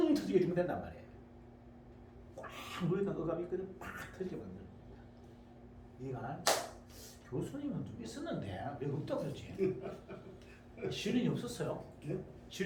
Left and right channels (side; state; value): both; identical; correlation 1.00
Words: 터지게 주면 된단 말이에요. 꽉 물에다 억압이 있거든. 팍 터지게 만드는 겁니다. 이해가? 교수님은 좀 있었는데 왜 없다고 그러지? 실인이 없었어요.